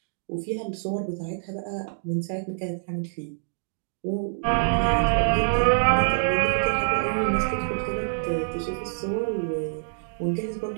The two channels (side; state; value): left; silent; digital silence